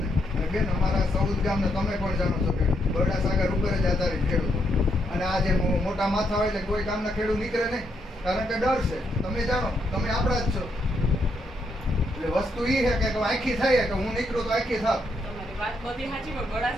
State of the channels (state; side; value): normal; both; correlation 0.77